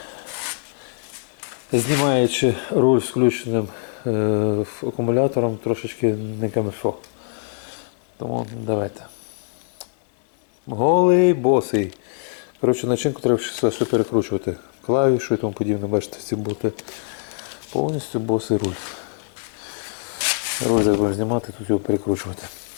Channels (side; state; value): right; silent; digital silence